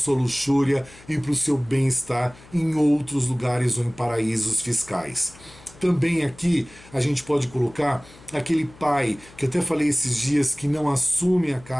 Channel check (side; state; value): left; noise; hum, 23 dB below the sound